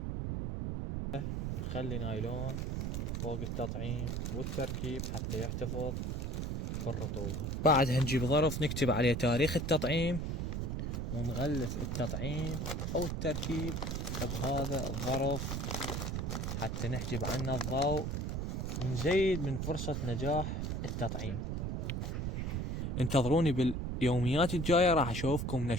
نخلي نايلون فوق التطعيم والتركيب حتى يحتفظ بالرطوبة. بعدها نجيب ظرف نكتب عليه تاريخ التطعيم، ونغلف التطعيم او التركيب بهذا الظرف حتى نحجب عنه الضوء ونزيد من فرصة نجاح التطعيم. انتظروني باليوميات الجاية، راح اشوفكم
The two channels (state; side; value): noise; right; rumble, 2 dB below the sound